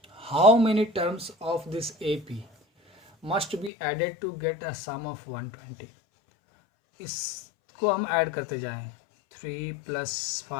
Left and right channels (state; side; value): drops out; right; at 3.7 s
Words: how many terms of this AP must be added to get a sum of 120। इसको हम ऐड करते जाएं, 3 प्लस